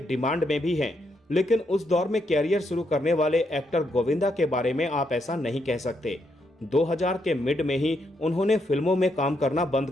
में भी हैं। लेकिन उस दौर में कैरियर शुरू करने वाले एक्टर गोविंदा के बारे में आप ऐसा नहीं कह सकते। 2000 के मिड में ही उन्होंने फिल्मों में काम करना बंद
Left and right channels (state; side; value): normal; both; correlation 0.78